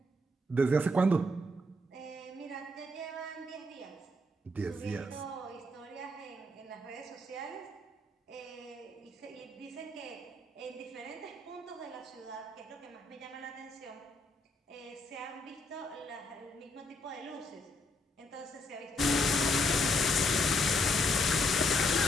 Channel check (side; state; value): both; normal; correlation 0.74